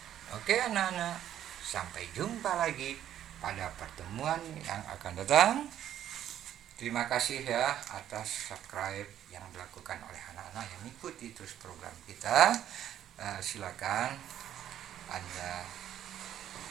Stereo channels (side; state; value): left; quieter; 11.0 dB